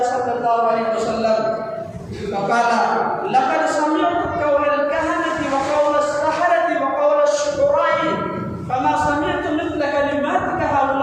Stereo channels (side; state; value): both; identical; correlation 1.00